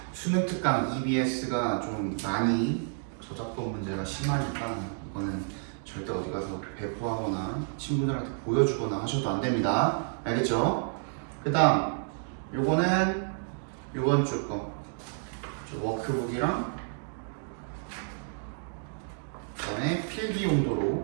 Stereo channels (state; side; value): silent; left; 58 dB below the other